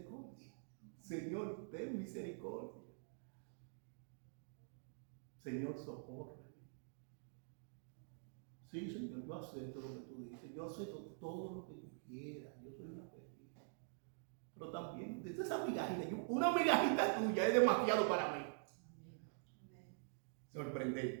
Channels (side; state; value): left; silent; digital silence